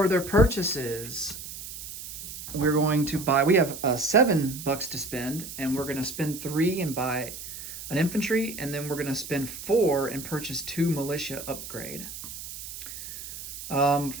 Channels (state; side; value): noise; right; hiss, 10 dB below the sound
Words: their purchases, we're going to buy, we have $7 to spend, and we're going to spend 3 and buy an infantry, and then we're going to spend 4 and purchase 2 militia upgrade.